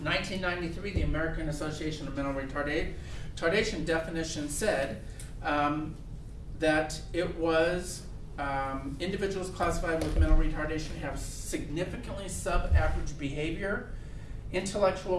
1993, the American Association of Mental Retardation definition said that it was individuals classified with mental retardation have significantly sub-average behavior,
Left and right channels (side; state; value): both; identical; correlation 1.00